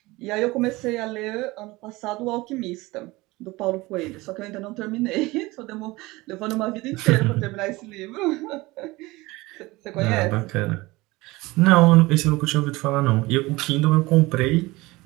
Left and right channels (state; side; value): quieter; left; 21.1 dB